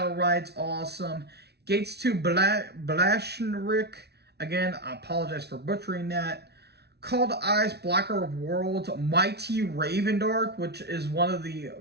Ride's awesome. Gates to Blashenrik, again, I apologize for butchering that. Call to Eyes, Blocker of Worlds, Mighty Ravendark, which is one of the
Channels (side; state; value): left; late; 0.49 ms